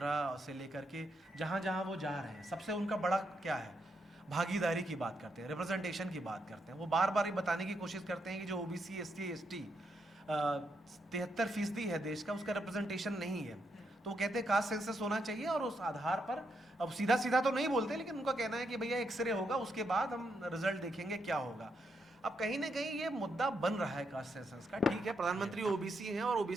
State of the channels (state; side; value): normal; both; correlation 0.80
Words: से लेकर के जहाँ जहाँ वो जा रहे हैं, सबसे उनका बड़ा क्या है, भागीदारी की बात करते हैं, रिप्रेजेंटेशन की बात करते हैं। वो बार बार ये बताने की कोशिश करते हैं कि जो ओबीसी SC ST 73% है देश का, उसका रिप्रेजेंटेशन नहीं है। तो वो कहते हैं कास्ट सेंसस होना चाहिए और उस आधार पर, अब सीधा सीधा तो नहीं बोलते, लेकिन उनका कहना है कि भैया एक्सरे होगा, उसके बाद हम रिजल्ट देखेंगे क्या होगा। अब कहीं ना कहीं ये मुद्दा बन रहा है कास्ट सेंसस का। ठीक है, प्रधानमंत्री ओबीसी हैं और